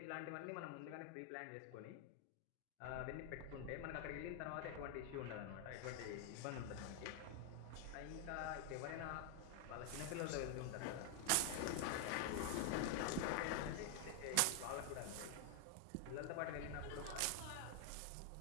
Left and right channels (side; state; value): both; different; correlation 0.00